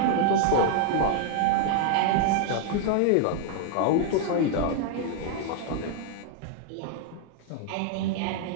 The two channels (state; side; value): different; both; correlation 0.00